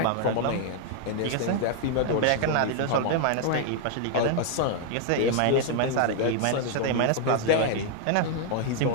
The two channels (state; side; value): different; both; correlation 0.00